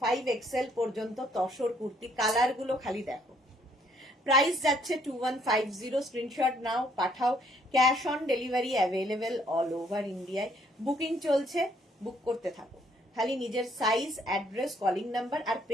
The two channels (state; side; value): normal; both; correlation 0.66